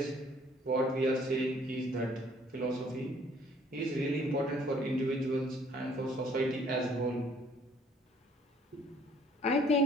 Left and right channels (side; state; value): both; normal; correlation 0.59